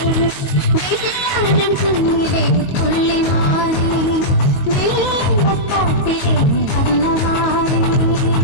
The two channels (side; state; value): right; late; 22 ms